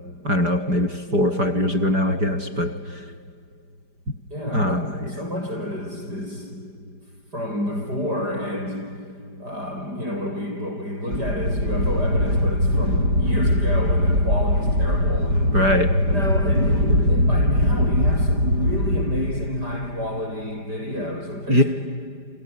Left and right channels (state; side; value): late; left; 5.0 ms